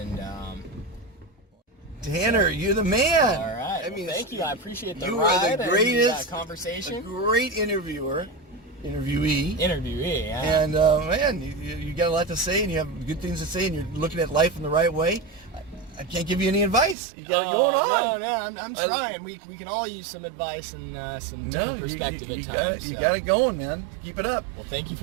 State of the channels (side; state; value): left; drops out; at 16.9 s